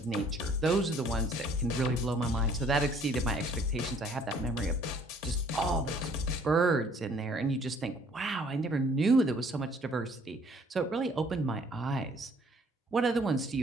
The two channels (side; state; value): both; normal; correlation 0.59